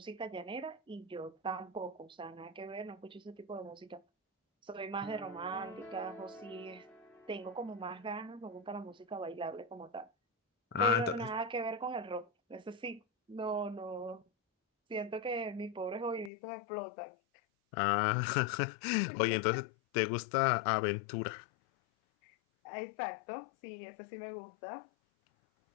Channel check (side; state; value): right; drops out; at 16.3 s